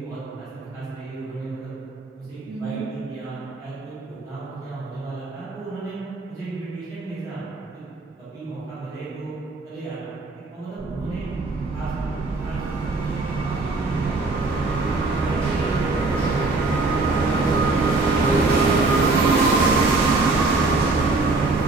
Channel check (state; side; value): quieter; left; 3.4 dB